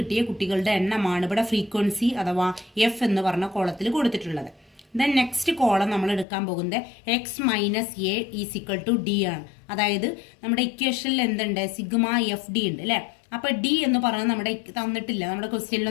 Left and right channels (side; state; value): right; drops out; at 6.2 s